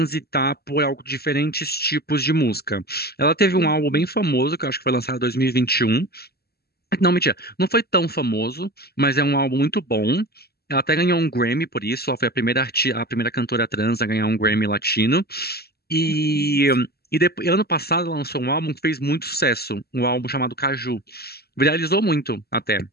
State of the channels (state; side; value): late; right; 0.46 ms